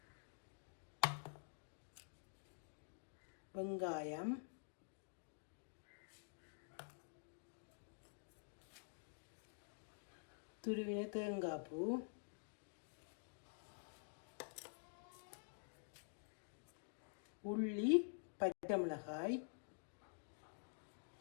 வெங்காயம், துருவின தேங்காய் பூ, உள்ளி, பச்சை மிளகாய்,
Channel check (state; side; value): silent; right; digital silence